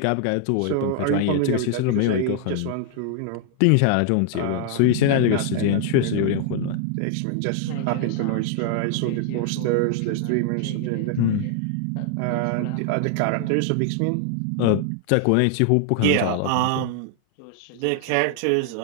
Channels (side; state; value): both; different; correlation 0.00